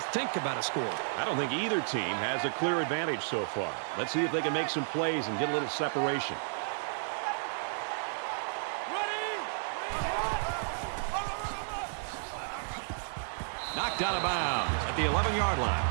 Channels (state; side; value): silent; left; 56 dB below the other